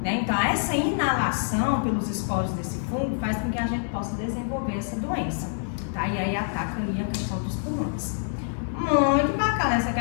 né? Então essa inalação pelos esporos desse fungo faz com que a gente possa desenvolver essa doença, tá? E aí ataca aí a questão dos pulmões. Muito bacana essa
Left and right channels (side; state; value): right; silent; digital silence